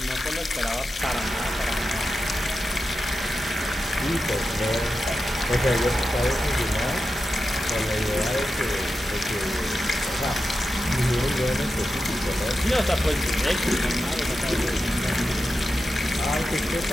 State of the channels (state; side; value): normal; both; correlation 0.90